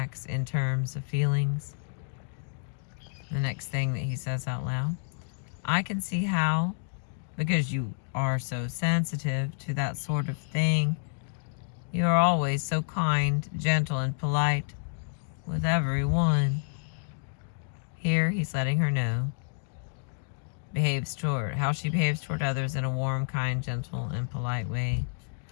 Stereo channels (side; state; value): right; silent; digital silence